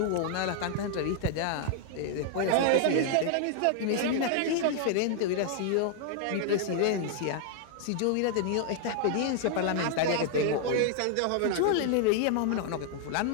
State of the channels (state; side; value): different; both; correlation 0.00